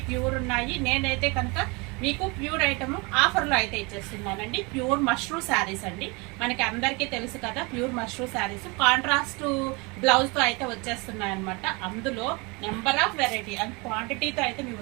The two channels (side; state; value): left; quieter; 28.0 dB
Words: ప్యూర్ ఉన్నాయి. నేనైతే కనుక మీకు ప్యూర్ ఐటమ్ ఆఫర్లో అయితే ఇచ్చేస్తున్నానండి. ప్యూర్ మష్రూ శారీస్ అండి. మనకి అందరికీ తెలుసు కదా, ప్యూర్ మష్రూ శారీస్ కాంట్రాస్ట్ బ్లౌజ్తో అయితే వచ్చేస్తున్నాయి అనమాట. అందులో నెంబర్ ఆఫ్ వెరైటీ అండ్ క్వాంటిటీతో అయితే మీ